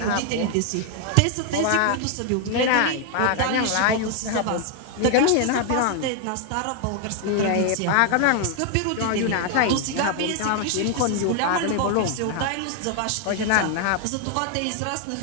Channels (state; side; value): different; both; correlation 0.00